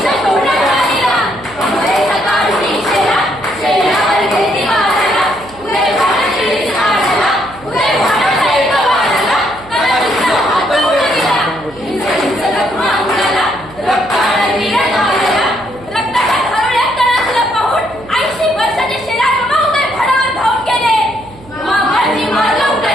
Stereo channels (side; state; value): right; noise; hum, 22 dB below the sound